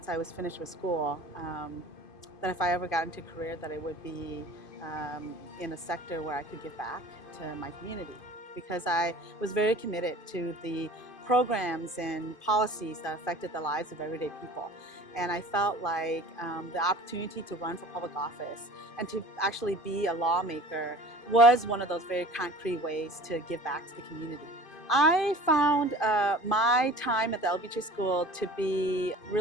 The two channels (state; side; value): late; right; 2.5 ms